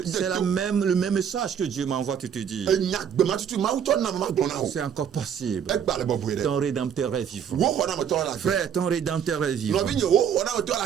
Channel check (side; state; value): left; quieter; 8.2 dB